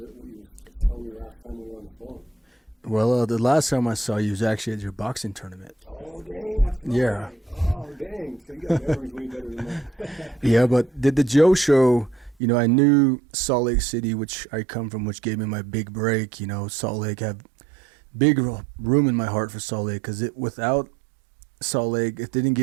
what you were telling me last time we were on the phone. Well, the last time I saw you was actually at your boxing tournament. Oh, dang, that's right. Yeah. Oh, dang. So you got memories way better than mine. Yeah, but the Joe show, I knew Salt Lake City, which I come from, which gave me my big break. Salt Lake, have big room in my heart for Salt Lake, because without Salt Lake, it didn't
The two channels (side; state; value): left; drops out; at 12.4 s